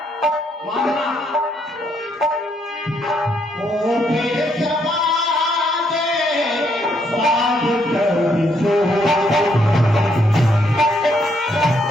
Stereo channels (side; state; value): both; normal; correlation 0.73